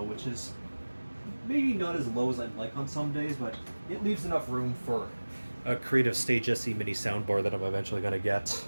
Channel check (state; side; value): inverted; both; correlation -1.00